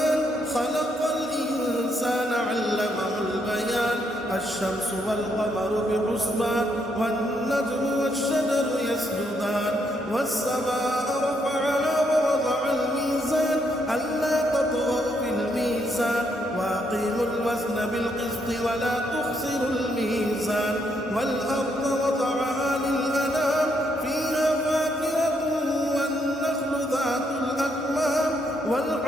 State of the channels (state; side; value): normal; both; correlation 0.75